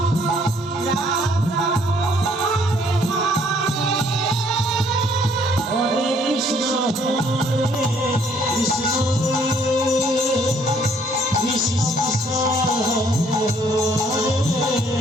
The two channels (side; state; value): both; normal; correlation 0.63